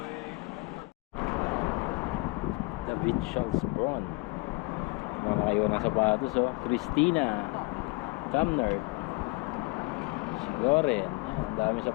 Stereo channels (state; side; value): quieter; right; 25.1 dB